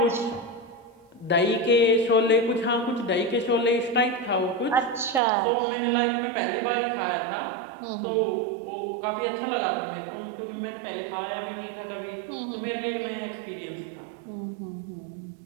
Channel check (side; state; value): left; drops out; at 5.2 s